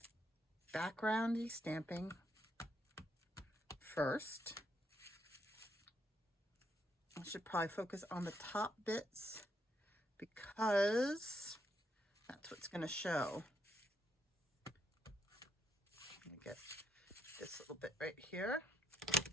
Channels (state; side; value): normal; both; correlation 0.75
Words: backgroundy stamping first. I should probably focus on the top bits because that's what's going to show. Let me get this little bit right here.